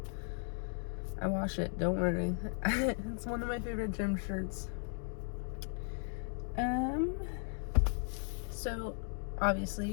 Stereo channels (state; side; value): silent; right; 53 dB below the other